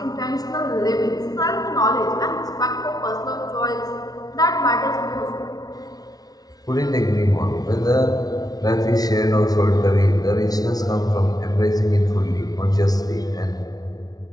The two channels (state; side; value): late; right; 0.19 ms